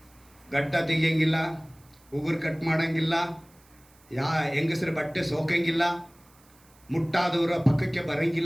ಗಡ್ಡ ತೆಗಿಯಂಗಿಲ್ಲ, ಉಗುರು ಕಟ್ ಮಾಡೋಂಗಿಲ್ಲ, ಹೆಂಗಸರ ಬಟ್ಟೆ ಸೋಕಂಗಿಲ್ಲ, ಮುಟ್ಟಾದವರ ಪಕ್ಕಕ್ಕೆ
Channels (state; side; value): noise; right; hiss, 29 dB below the sound